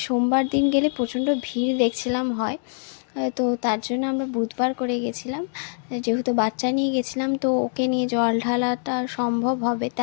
সোমবার দিন গেলে প্রচণ্ড ভিড় দেখছিলাম হয়। তো তার জন্য আমরা বুধবার করে গেছিলাম। যেহেতু বাচ্চা নিয়ে গেছিলাম, তো ওকে নিয়ে জল ঢালাটা সম্ভব হবে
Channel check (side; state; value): right; silent; digital silence